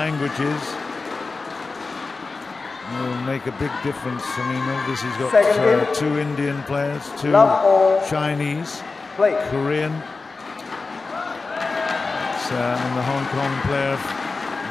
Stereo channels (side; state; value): right; quieter; 4.0 dB